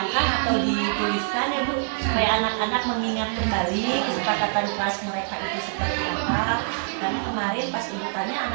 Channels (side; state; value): left; silent; digital silence